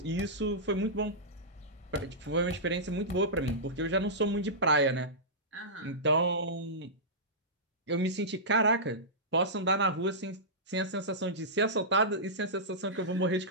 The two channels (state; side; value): normal; both; correlation -0.15